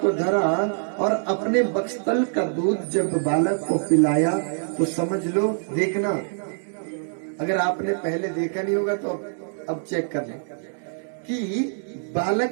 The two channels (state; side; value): silent; left; digital silence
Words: को धरा और अपने बक्स्तल का दूध जब बालक को पिलाया तो समझ लो, देखना, अगर आपने पहले देखा नहीं होगा तो अब चेक कर लें कि